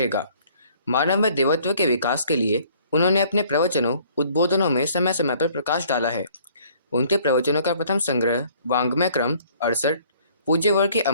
मानव में देवत्व के विकास के लिए उन्होंने अपने प्रवचनों उद्बोधनों में समय समय पर प्रकाश डाला है। उनके प्रवचनों का प्रथम संग्रह वाङ्मय क्रम 68 पूज्य वर्ग की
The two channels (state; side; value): inverted; both; correlation -0.58